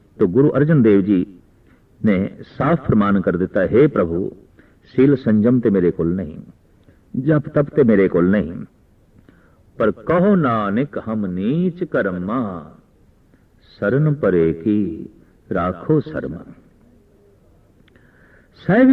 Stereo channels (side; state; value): both; identical; correlation 1.00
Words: तो गुरु अर्जन देव जी ने साफ फरमान कर दिता, हे प्रभु सील संजम ते मेरे कोल नहीं, जप तप ते मेरे कोल नहीं, पर कहो नानक हम नीच कर्मा, शरण परे की राखो शर्म। साहिब